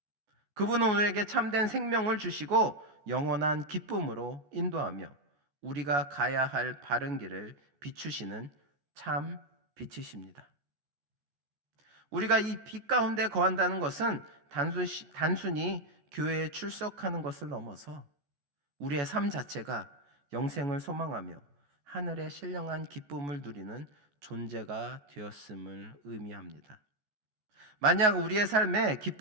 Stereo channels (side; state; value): left; late; 14 ms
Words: 그분은 우리에게 참된 생명을 주시고 영원한 기쁨으로 인도하며 우리가 가야 할 바른 길을 비추시는 참 빛이십니다. 우리가 이 빛 가운데 거한다는 것은 단순히 교회에 출석하는 것을 넘어서 우리의 삶 자체가 영생을 소망하며 하늘의 신령한 기쁨을 누리는 존재가 되었음을 의미합니다. 만약 우리의 삶에